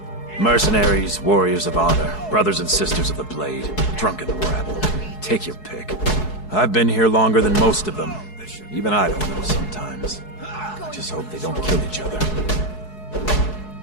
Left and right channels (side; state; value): right; late; 4.7 ms